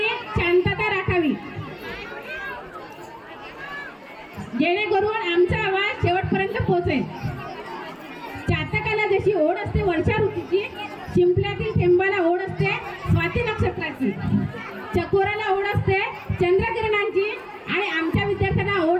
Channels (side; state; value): both; identical; correlation 1.00